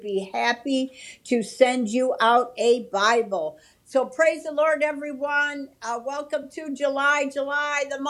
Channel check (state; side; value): identical; both; correlation 1.00